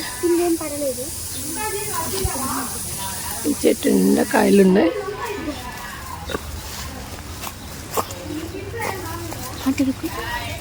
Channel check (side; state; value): both; identical; correlation 1.00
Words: ఈ చెట్టు నిండా కాయలు ఉన్నాయి.